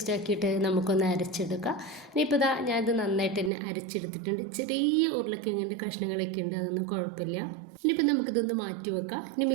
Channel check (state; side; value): drops out; left; at 3.5 s